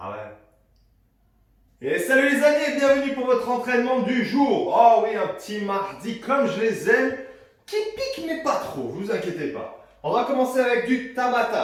ouais. Et salut les amis et bienvenue pour votre entraînement du jour. Oh oui, un petit mardi comme je les aime, qui pique mais pas trop, vous inquiétez pas. On va commencer avec du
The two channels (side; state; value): both; identical; correlation 1.00